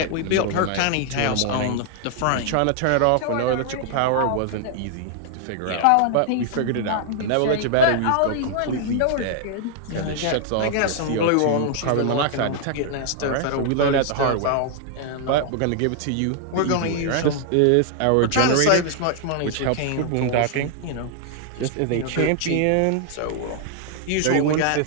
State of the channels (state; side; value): different; both; correlation -0.01